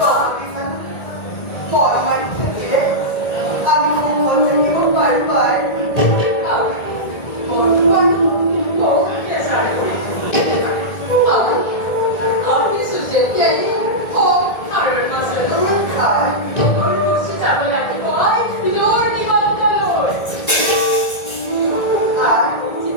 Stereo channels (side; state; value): right; late; 1.8 ms